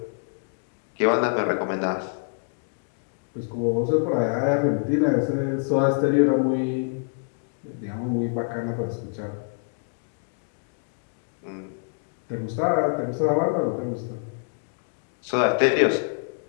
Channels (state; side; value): silent; right; digital silence